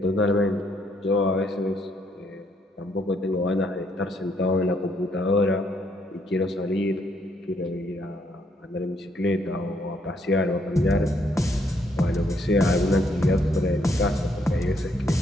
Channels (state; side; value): normal; both; correlation 0.71